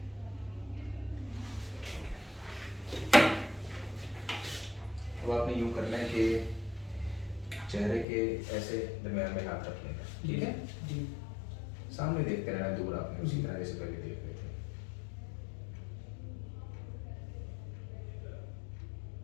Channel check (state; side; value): drops out; right; at 8.1 s